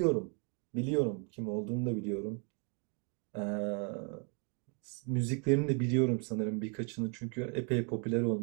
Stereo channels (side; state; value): left; quieter; 38.6 dB